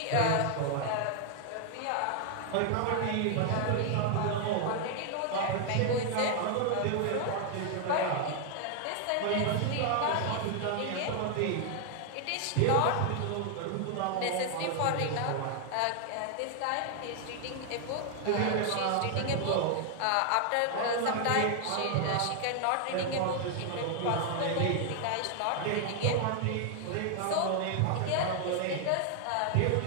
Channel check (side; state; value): both; different; correlation 0.00